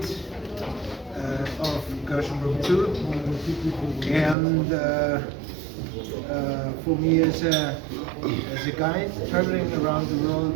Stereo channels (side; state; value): left; drops out; at 4.4 s